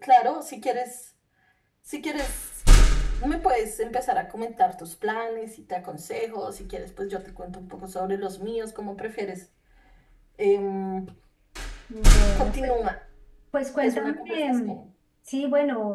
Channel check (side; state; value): both; identical; correlation 1.00